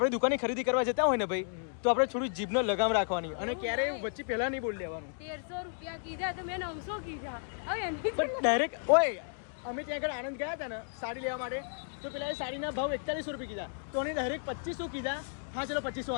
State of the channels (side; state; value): right; silent; digital silence